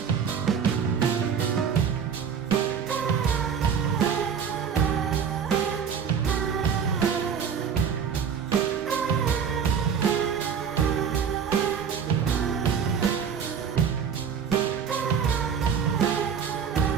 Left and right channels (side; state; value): left; quieter; 7.2 dB